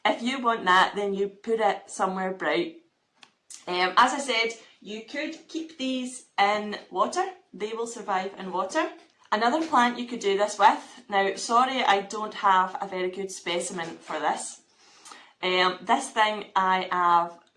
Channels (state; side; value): identical; both; correlation 1.00